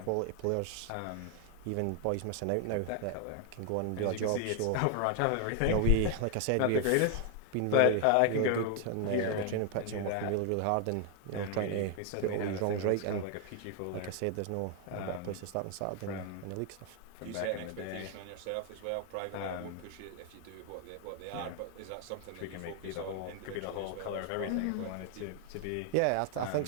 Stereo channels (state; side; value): different; both; correlation 0.00